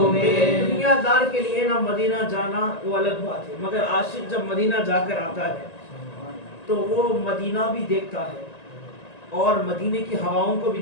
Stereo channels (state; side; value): late; right; 1.9 ms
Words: میں دنیا دار کے لیے نا مدینہ جانا وہ الگ بات ہے مگر عاشق جب مدینہ جا کر آتا ہے تو وہ مدینہ بھی دیکھتا ہے اور مدینے کی ہواؤں کو بھی